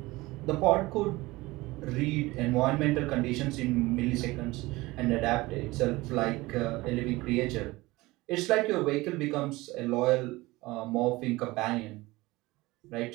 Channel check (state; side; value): quieter; left; 20.6 dB